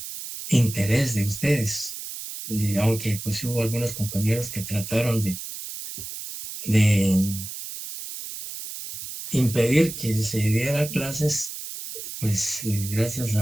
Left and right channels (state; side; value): noise; right; hiss, 9 dB below the sound